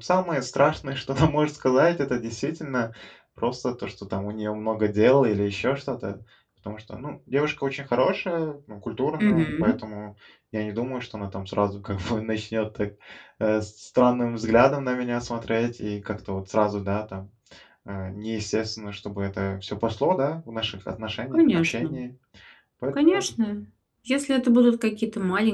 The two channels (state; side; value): identical; both; correlation 1.00